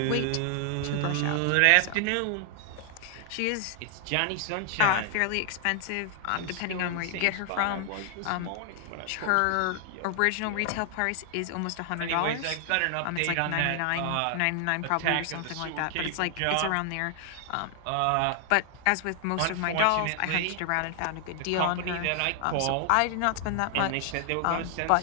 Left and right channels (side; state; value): both; different; correlation 0.00